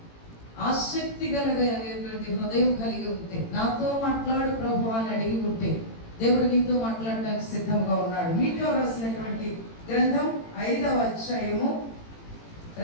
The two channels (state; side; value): late; right; 18 ms